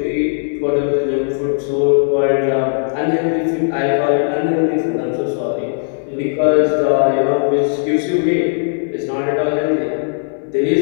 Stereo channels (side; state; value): right; silent; digital silence